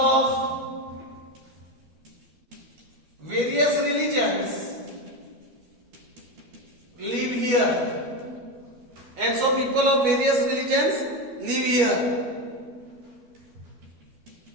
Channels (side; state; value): left; late; 13 ms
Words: various religions live here, and so people of various religions live here,